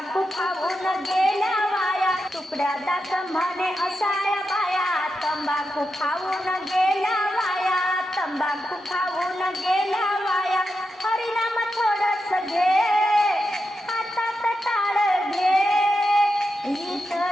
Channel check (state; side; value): normal; both; correlation 0.87